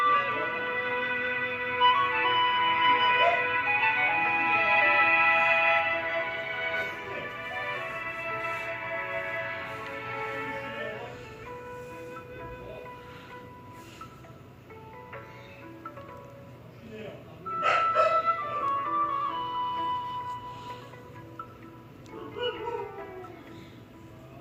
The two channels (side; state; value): both; identical; correlation 1.00